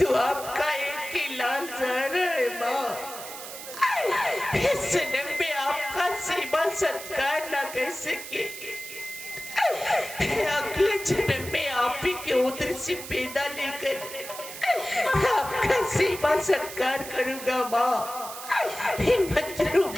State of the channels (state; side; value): noise; right; hiss, 11 dB below the sound